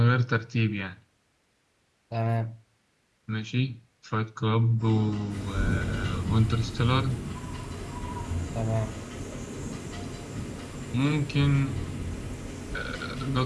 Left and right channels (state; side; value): identical; both; correlation 1.00